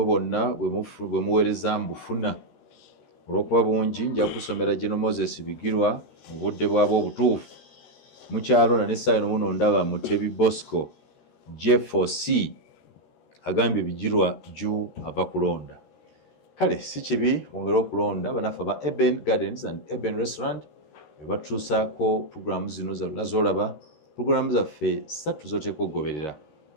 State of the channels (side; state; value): right; late; 13 ms